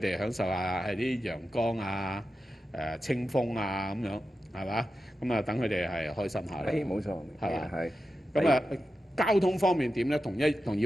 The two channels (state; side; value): normal; both; correlation 0.91